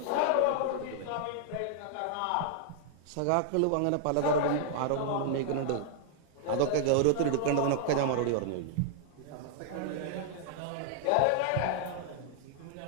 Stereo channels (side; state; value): both; different; correlation -0.01